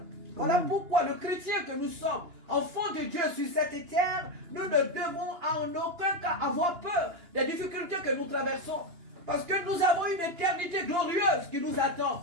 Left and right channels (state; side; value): late; left; 2.9 ms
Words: Voilà pourquoi le chrétien que nous sommes, enfants de Dieu sur cette terre, nous ne devons en aucun cas avoir peur des difficultés que nous traversons. Parce que nous avons une éternité glorieuse qui nous